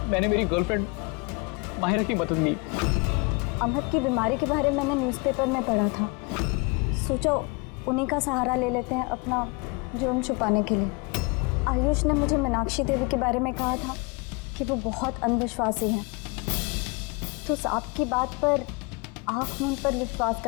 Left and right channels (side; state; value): right; quieter; 29.4 dB